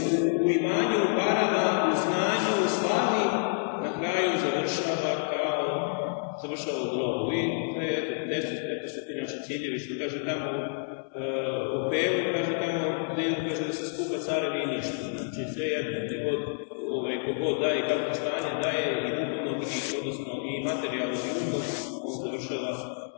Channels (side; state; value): right; silent; digital silence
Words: u imanju, u parama, u znanju, u slavi, na kraju završava u grobu. I to je, eto su ti naši ciljevi, što kaže tamo u Pelu, kaže tamo, kaže da se skupa carevi i ništa. Znači sve jedno, kogod daje kako stanje, daje i duhovno, odnosno i materijalno i umno, on završava